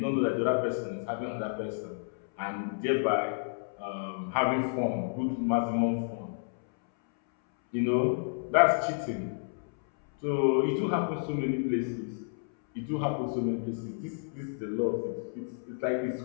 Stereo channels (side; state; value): right; silent; 57 dB below the other